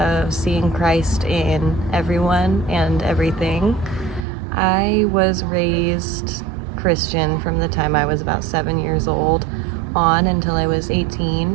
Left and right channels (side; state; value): left; drops out; at 4.2 s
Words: seeing Christ in everyone and everything. I was raised Christian from the time I was about 7 years old on until I was